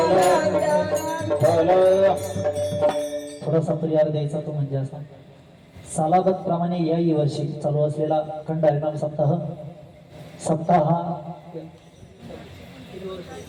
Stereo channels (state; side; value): identical; both; correlation 1.00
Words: थोडासा परिहार द्यायचा तो म्हणजे असा, सालागत प्रमाणे याही वर्षी चालू असलेला अखंड हरिनाम सप्ताह